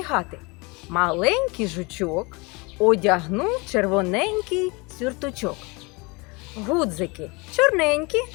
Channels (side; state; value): right; quieter; 27.2 dB